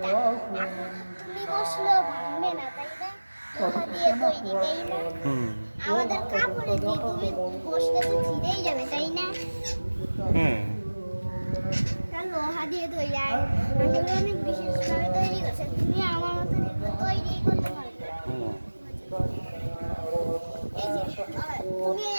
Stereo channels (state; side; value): inverted; both; correlation -1.00